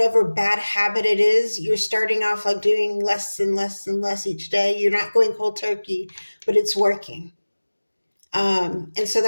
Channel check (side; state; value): both; inverted; correlation -1.00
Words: bad habit it is. You're starting off like doing less and less and less each day. You're not going cold turkey, but it's working. And so